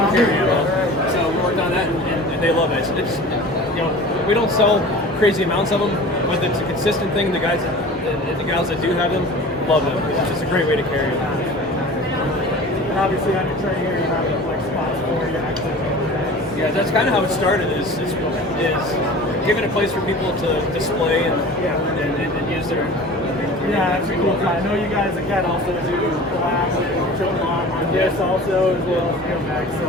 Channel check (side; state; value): both; normal; correlation 0.39